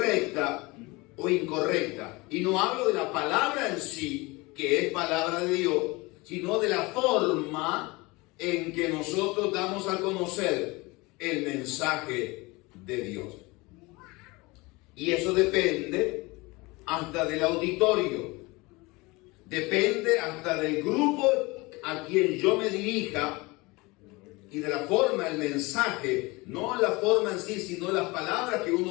o incorrecta. Y no hablo de la palabra en sí, que es palabra de Dios, sino de la forma en que nosotros damos a conocer el mensaje de Dios. Y eso depende hasta del auditorio, depende hasta del grupo a quien yo me dirija y de la forma, el mensaje, no la forma en sí, sino las palabras que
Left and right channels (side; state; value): right; quieter; 23.8 dB